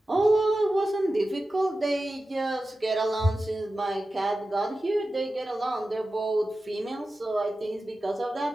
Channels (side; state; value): both; normal; correlation 0.94